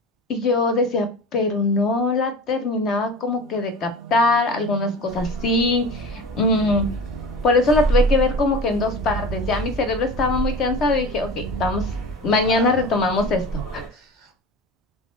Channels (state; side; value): normal; both; correlation 0.35